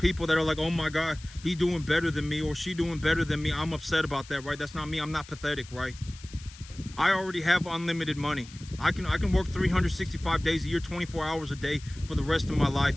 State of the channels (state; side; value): noise; left; hiss, 19 dB below the sound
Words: that are like, oh my God, he's doing better than me or she doing better than me. I'm upset about that, right? That's not me. I'm not pathetic, right? I already have unlimited money. I can work 365 days a year, 24 hours a day for the rest of my